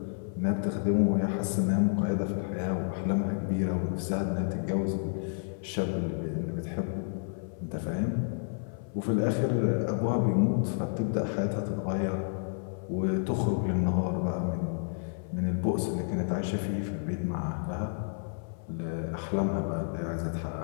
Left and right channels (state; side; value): silent; right; 58 dB below the other